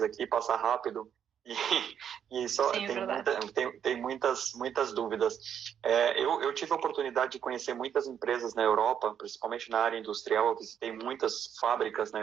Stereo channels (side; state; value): left; quieter; 8.7 dB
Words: aqui, passa rápido. E só tem muitas dúvidas. Eu tive a oportunidade de conhecer muitas empresas na Europa, principalmente na área industrial. Eu visitei muitas fábricas na